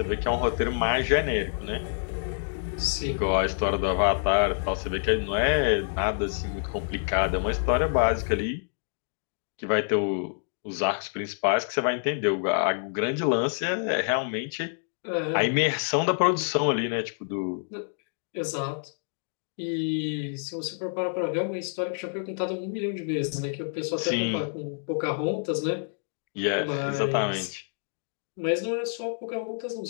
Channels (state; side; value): silent; right; digital silence